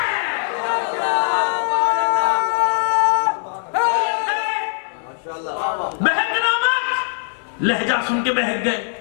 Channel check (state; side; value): silent; right; 65 dB below the other